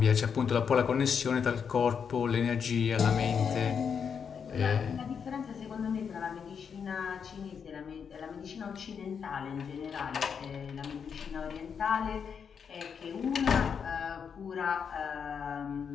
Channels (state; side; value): quieter; right; 6.8 dB